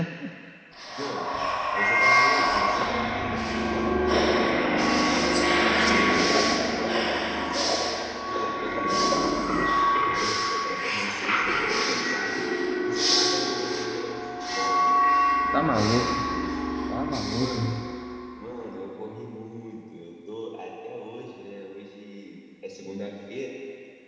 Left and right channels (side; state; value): both; identical; correlation 1.00